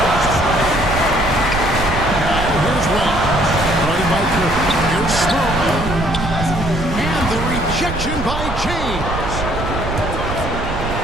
Now here's Wells. Guarded by Curry. Here's Smoke. And the rejection by James.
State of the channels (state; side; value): noise; right; rumble, 6 dB below the sound